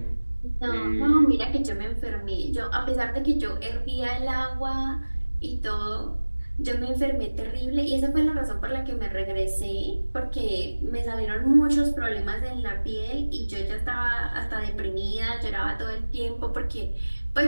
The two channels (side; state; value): both; inverted; correlation -1.00